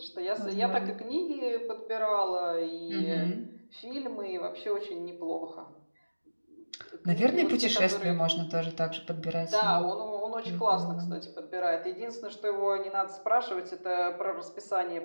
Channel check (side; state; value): both; inverted; correlation -1.00